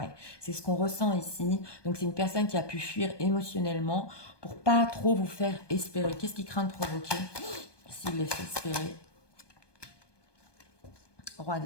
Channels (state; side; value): late; right; 1.2 ms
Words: c'est ce qu'on ressent ici. Donc c'est une personne qui a pu fuir émotionnellement pour pas trop vous faire espérer. Qu'est-ce qu'il craint de provoquer s'il les fait espérer? Roi